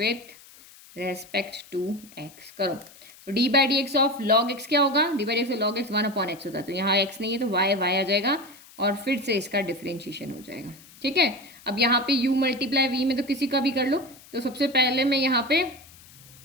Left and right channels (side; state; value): left; noise; hiss, 22 dB below the sound